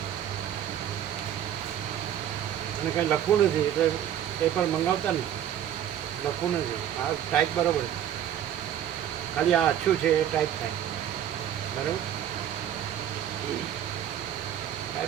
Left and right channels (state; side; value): quieter; left; 10.4 dB